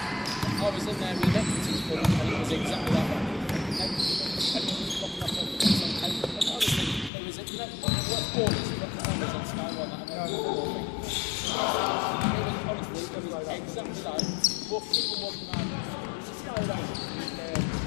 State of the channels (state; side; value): drops out; right; at 7.1 s